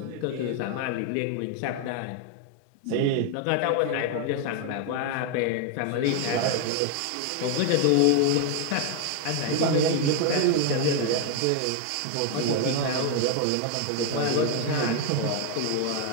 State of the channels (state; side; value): different; both; correlation 0.01